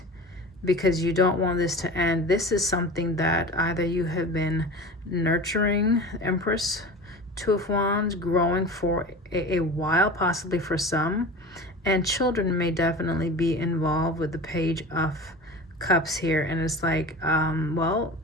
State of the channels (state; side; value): normal; both; correlation 0.34